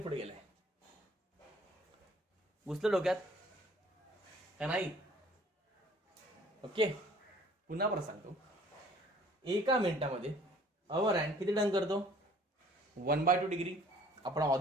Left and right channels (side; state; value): both; normal; correlation 0.55